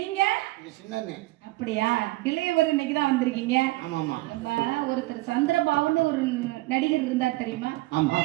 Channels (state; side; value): quieter; left; 20.2 dB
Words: சின்ன அண்ணே. அப்படியா? இளையவர் இன்னைக்கு தான் வந்திருக்கீங்க. ஆமாமா. நம்ம ஒருத்தர் சந்திரபாபுன்னு ஒரு நடிகர் இருந்தார் தெரியுமா? ஆமா.